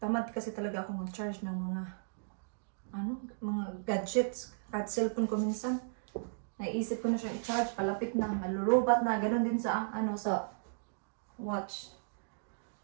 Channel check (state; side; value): silent; left; digital silence